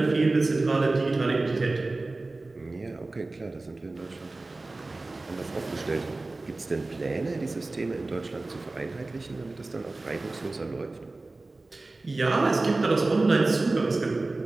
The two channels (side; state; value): left; quieter; 3.2 dB